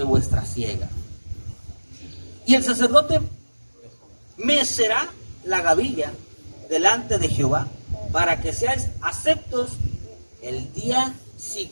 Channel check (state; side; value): inverted; both; correlation -1.00